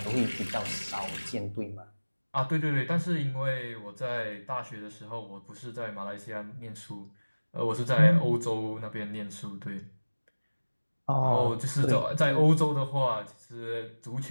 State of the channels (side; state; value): both; inverted; correlation -1.00